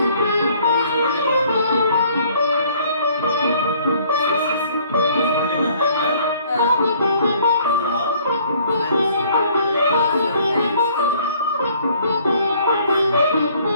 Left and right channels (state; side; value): inverted; both; correlation -0.59